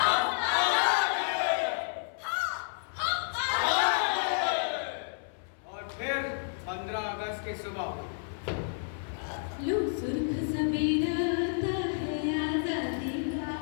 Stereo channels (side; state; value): right; silent; 57 dB below the other